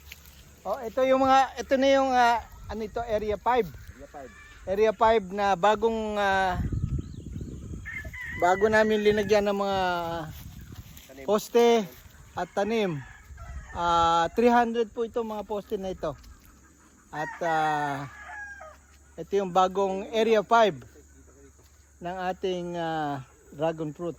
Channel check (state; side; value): identical; both; correlation 1.00